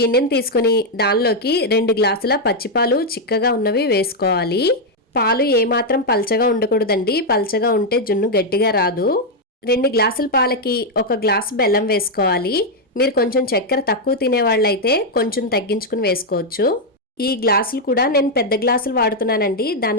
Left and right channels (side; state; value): both; normal; correlation 0.00